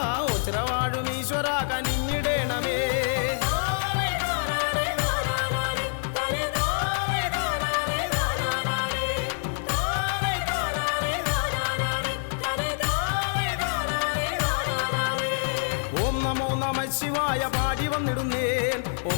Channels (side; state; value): right; silent; digital silence